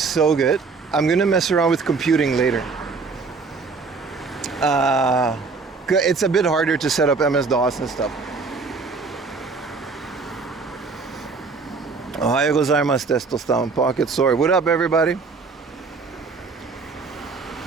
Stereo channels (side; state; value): left; quieter; 4.5 dB